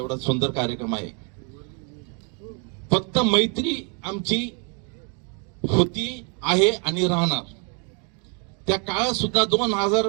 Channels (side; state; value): left; quieter; 37.9 dB